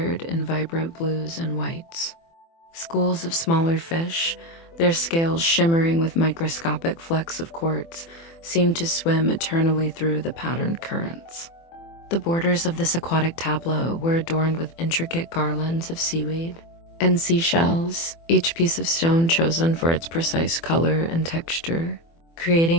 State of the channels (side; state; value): right; late; 24 ms